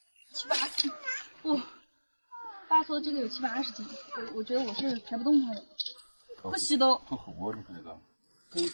7、8斤，哇！爸说这个有7、80斤，我觉得我是抬不动它的，不吸都。很厚，你看那个。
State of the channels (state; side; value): inverted; both; correlation -1.00